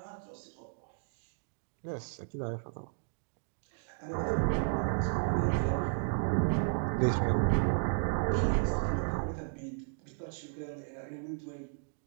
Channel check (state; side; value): silent; left; digital silence